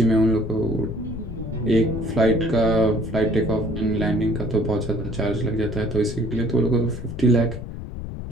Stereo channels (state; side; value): noise; left; rumble, 8 dB below the sound